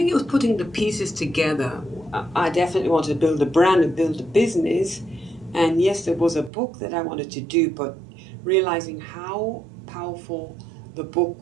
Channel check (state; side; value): drops out; left; at 6.5 s